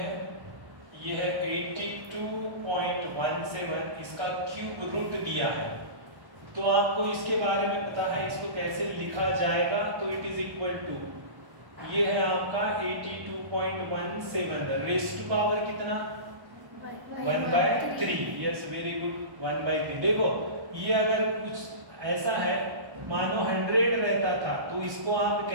ये है 82.17, इसका क्यूब रूट दिया है। तो आपको इसके बारे में पता है इसको कैसे लिखा जाएगा, तो इट इज इक्वल टू ये है आपका 82.17 रेज़ टू पावर कितना 1/3। Yes very good 1/3। देखो ये अगर कुछ ऐसा है मानो 100 रहता था तो इसको आप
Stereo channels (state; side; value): late; left; 1.1 ms